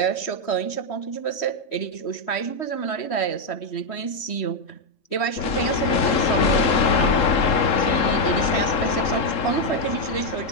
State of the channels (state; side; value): late; right; 3.7 ms